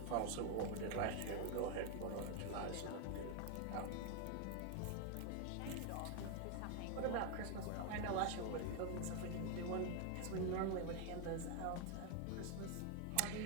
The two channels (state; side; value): different; both; correlation 0.01